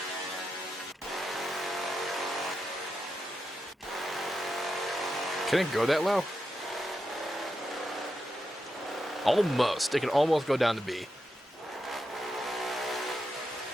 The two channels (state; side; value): normal; both; correlation 0.87